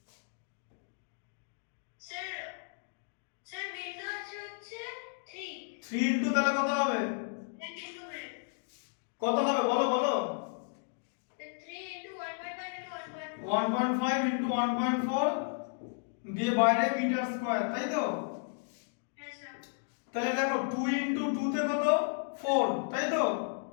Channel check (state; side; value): silent; right; 55 dB below the other